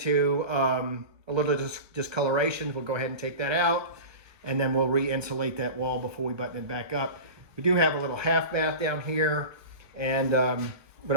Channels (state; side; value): late; left; 1.2 ms